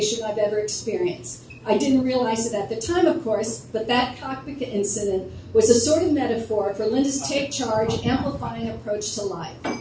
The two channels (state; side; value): identical; both; correlation 1.00